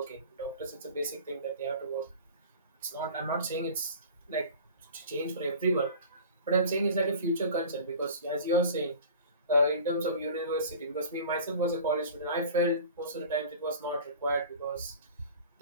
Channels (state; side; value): inverted; both; correlation -0.40